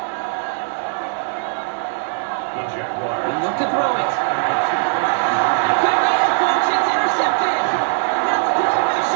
The Jaguars. They look to throw it. Could be it, folks. It's intercepted. That's Bill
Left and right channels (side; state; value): left; silent; digital silence